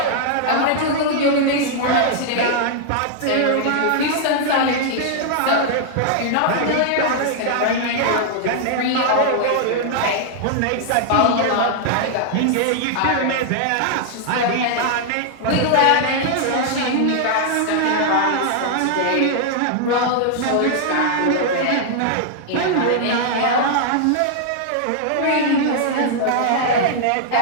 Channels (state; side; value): different; both; correlation -0.01